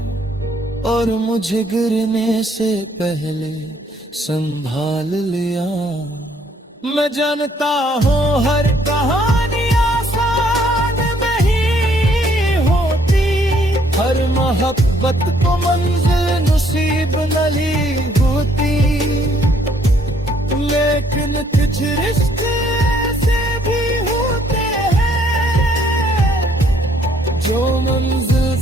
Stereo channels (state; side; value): normal; both; correlation 0.66